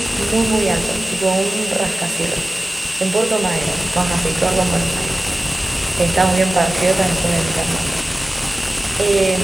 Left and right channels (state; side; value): normal; both; correlation 0.96